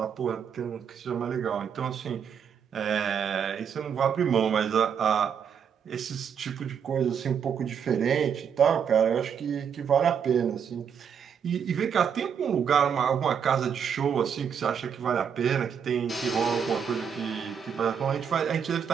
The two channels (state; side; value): quieter; left; 7.5 dB